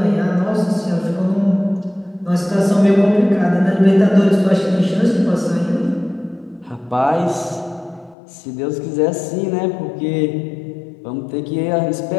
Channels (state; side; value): drops out; right; at 8.2 s